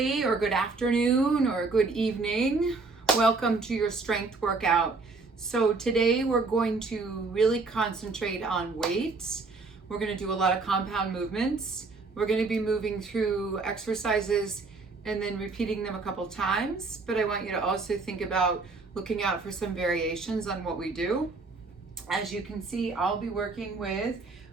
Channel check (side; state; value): left; quieter; 4.0 dB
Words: or good afternoon, or good evening. Welcome to your strength workout. So today we're going to really concentrate on weights. We're going to do a lot of compound movements. We're going to be moving through exercises and then repeating them a couple times. But I want you to also think about looking out for some variations on what we do. As you can see, I'll be working with,